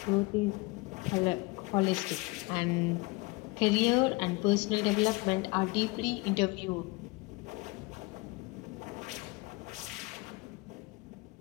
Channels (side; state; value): right; quieter; 25.2 dB